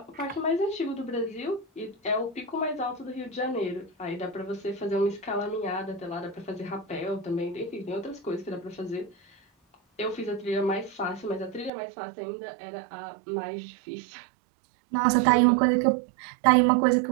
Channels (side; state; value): left; drops out; at 11.7 s